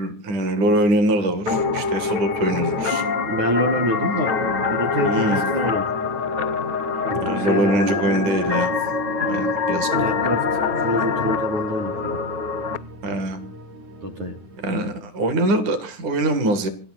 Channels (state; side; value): late; left; 9.6 ms